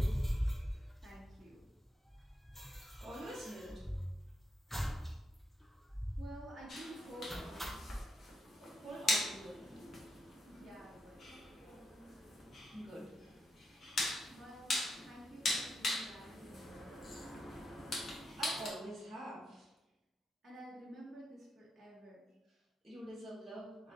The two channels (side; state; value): both; normal; correlation 0.83